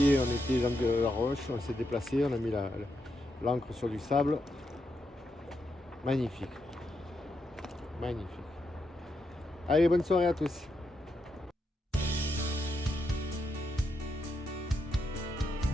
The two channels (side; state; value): both; normal; correlation 0.82